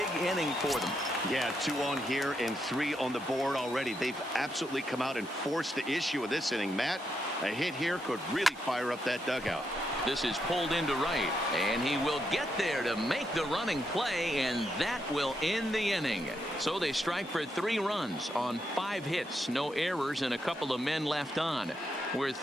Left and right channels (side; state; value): both; normal; correlation 0.81